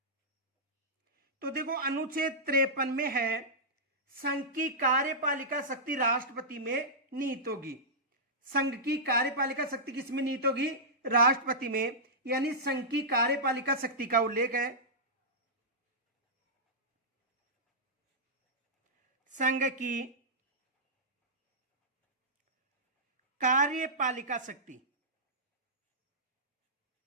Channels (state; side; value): normal; both; correlation -0.13